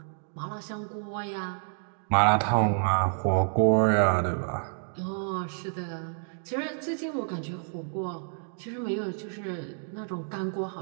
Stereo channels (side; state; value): left; silent; 59 dB below the other